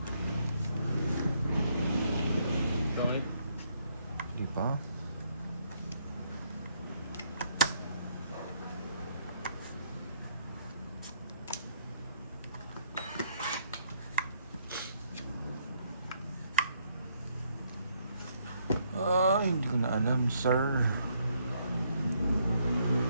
Bakit? Di pa? Hindi ko na alam, sir.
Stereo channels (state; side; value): inverted; both; correlation -0.71